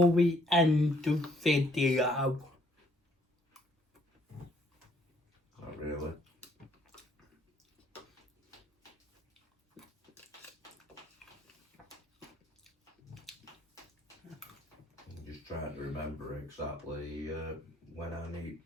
we end the video? Not really. I'm just trying to remember exactly when I need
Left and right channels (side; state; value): both; normal; correlation 0.66